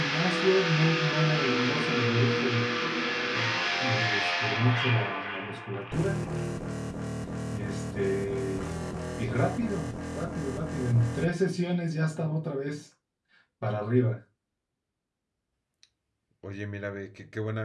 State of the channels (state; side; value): identical; both; correlation 1.00